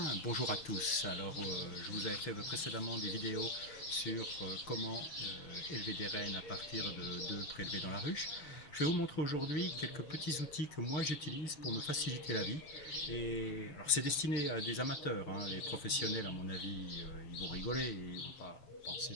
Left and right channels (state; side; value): late; right; 6.7 ms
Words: bonjour à tous. Alors, je vous avais fait précédemment des vidéos sur comment élever des rennes à partir d'œufs prélevés dans la ruche. Je vais vous montrer aujourd'hui quelques petits outils que moi j'utilise pour me faciliter la vie. Et alors, c'est destiné à des amateurs, hein. Les professionnels, à mon avis, ils vont rigoler et ils vont pas penser